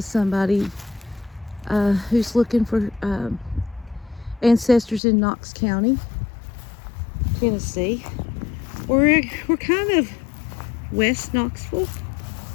somebody who's looking for ancestors in Knox County, Tennessee. We're kind of west Knoxville.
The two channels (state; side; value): drops out; right; at 5.0 s